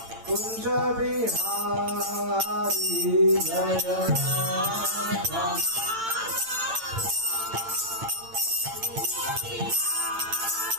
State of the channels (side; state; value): left; late; 8.9 ms